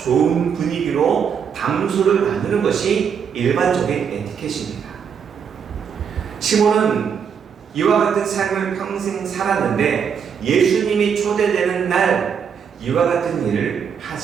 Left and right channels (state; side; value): quieter; left; 7.2 dB